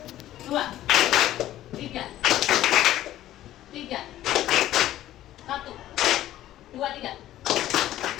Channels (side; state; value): right; quieter; 13.6 dB